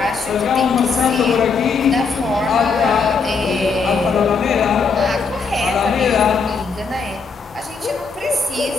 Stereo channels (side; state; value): right; quieter; 5.0 dB